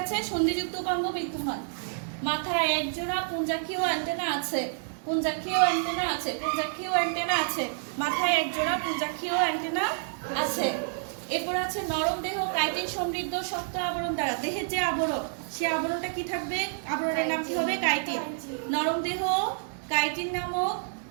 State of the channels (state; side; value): silent; left; digital silence